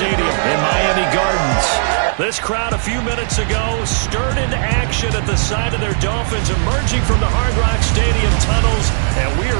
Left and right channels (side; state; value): left; silent; digital silence